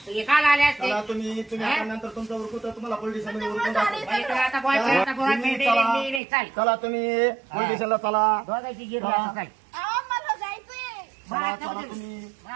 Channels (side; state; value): left; drops out; at 6.2 s